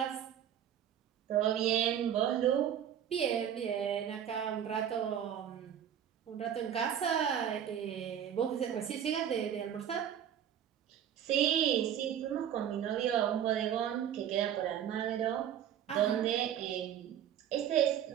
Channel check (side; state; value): left; quieter; 9.7 dB